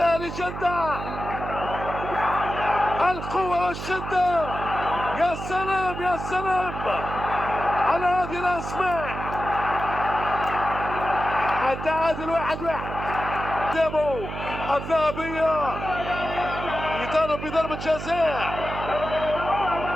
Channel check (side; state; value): right; noise; hum, 8 dB below the sound